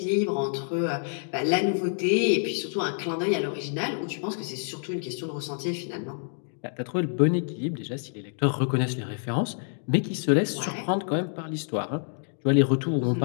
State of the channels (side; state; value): right; silent; digital silence